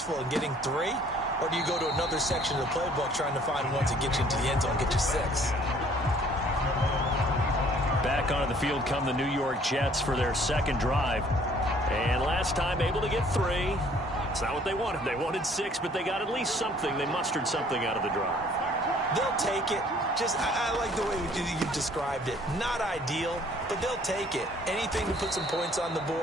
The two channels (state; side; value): normal; both; correlation 0.58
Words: in getting 3? Or do you go to another section of the playbook trying to find ones that get you into the end zone and get you 6? Back onto the field come the New York Jets for their 2nd drive. And last time able to get 3. It's not what they wanted. They wanted 6, but they got at least something. They mustered something out of the drive. They'll take it. I like the way you described it. Not ideal, but they'll take it. Anything to put some points on the